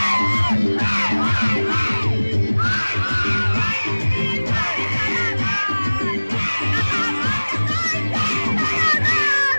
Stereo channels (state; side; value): inverted; both; correlation -1.00